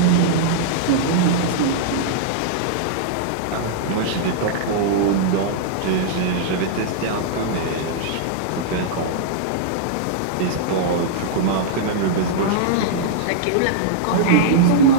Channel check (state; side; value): different; both; correlation -0.02